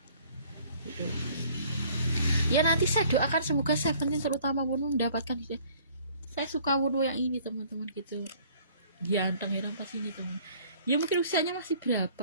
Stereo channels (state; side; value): inverted; both; correlation -0.55